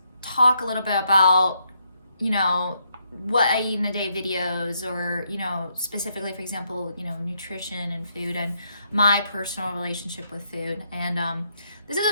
talk a little bit about, what I eat in a day videos, or, specifically, for example, nutrition and food and my personal relationship with food. And this is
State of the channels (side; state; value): both; inverted; correlation -0.76